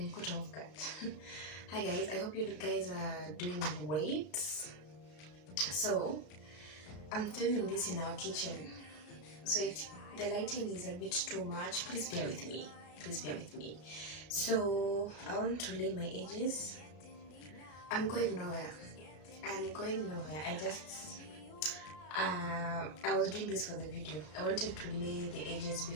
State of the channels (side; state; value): right; late; 33 ms